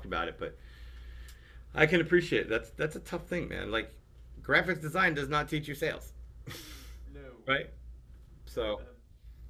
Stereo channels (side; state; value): both; identical; correlation 1.00